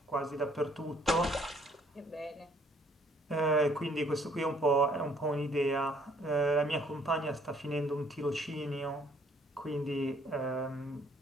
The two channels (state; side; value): normal; both; correlation 0.62